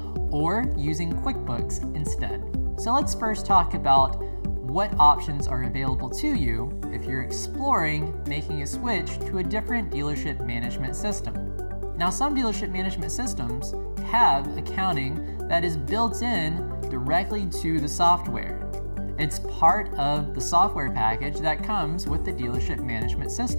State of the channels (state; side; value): inverted; both; correlation -1.00